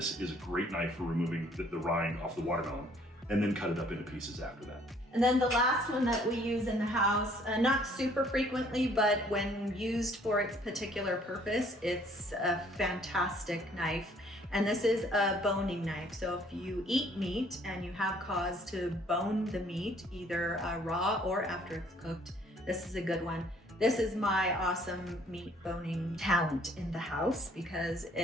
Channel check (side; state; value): both; normal; correlation 0.60